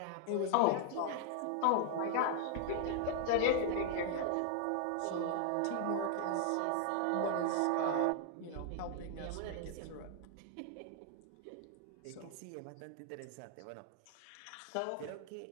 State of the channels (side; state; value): both; different; correlation 0.00